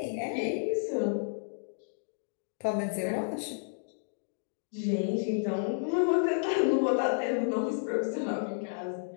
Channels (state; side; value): silent; right; digital silence